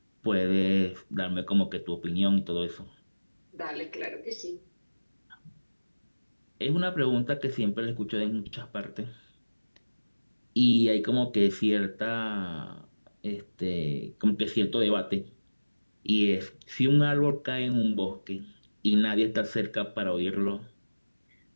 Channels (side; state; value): both; inverted; correlation -1.00